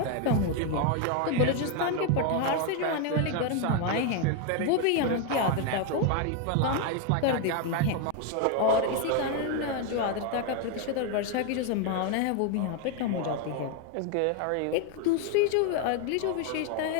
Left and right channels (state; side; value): different; both; correlation 0.01